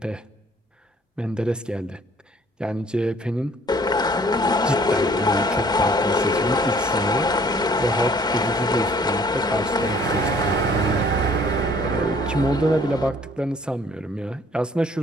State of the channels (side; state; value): both; normal; correlation 0.57